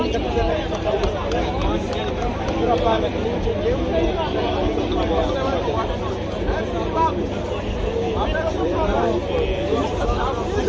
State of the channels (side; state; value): both; identical; correlation 1.00